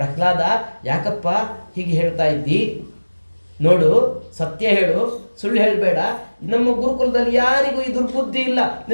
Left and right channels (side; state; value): both; inverted; correlation -1.00